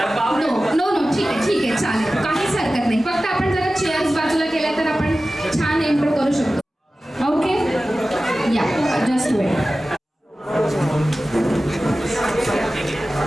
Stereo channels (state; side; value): normal; both; correlation 0.96